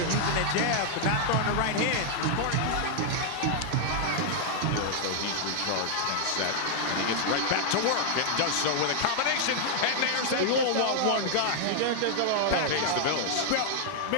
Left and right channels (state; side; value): different; both; correlation 0.00